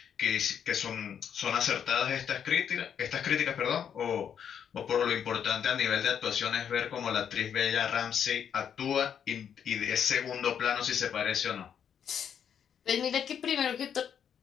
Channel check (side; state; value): right; quieter; 8.3 dB